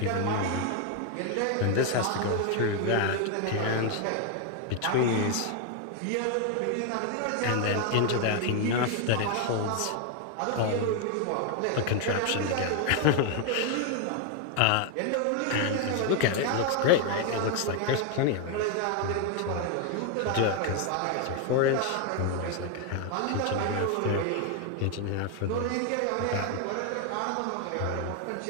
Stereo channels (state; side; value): different; both; correlation 0.01